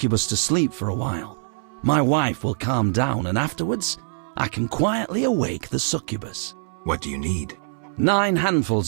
to sleep for a while. My wife will calm down, and afterwards, I can quietly awake the succubus. What do you need? 9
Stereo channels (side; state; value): left; silent; 63 dB below the other